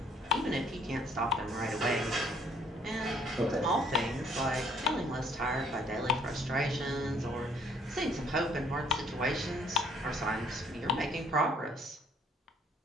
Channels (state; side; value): normal; both; correlation 0.62